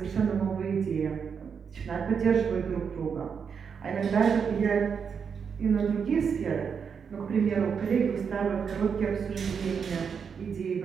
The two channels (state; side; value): quieter; left; 6.5 dB